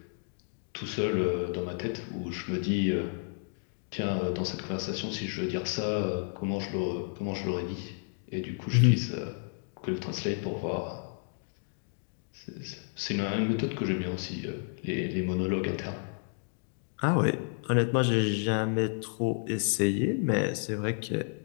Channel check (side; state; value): right; silent; 57 dB below the other